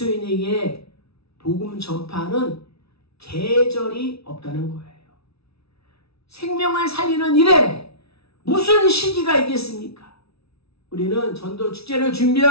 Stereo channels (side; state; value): right; late; 0.77 ms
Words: 복음 전파는 계절이 없다는 거예요. 생명을 살리는 일에 무슨 시기가 있겠습니까? 우리는 전도 축제를